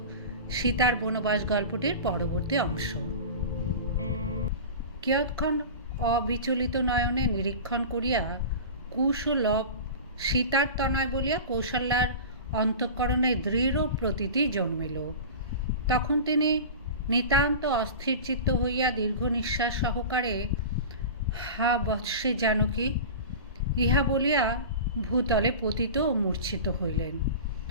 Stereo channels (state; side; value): inverted; both; correlation -0.32